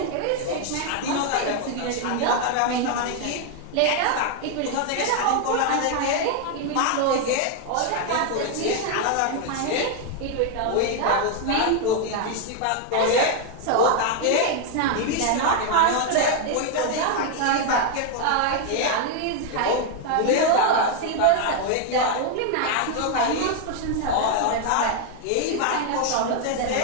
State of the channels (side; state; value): both; different; correlation 0.00